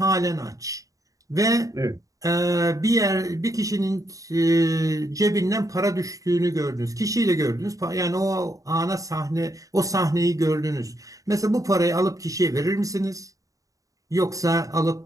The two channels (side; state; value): left; late; 0.16 ms